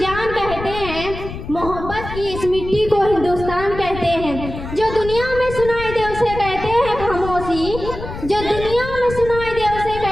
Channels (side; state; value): left; noise; rumble, 9 dB below the sound